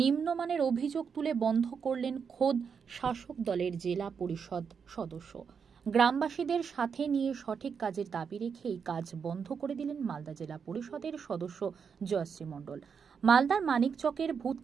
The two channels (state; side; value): quieter; left; 6.4 dB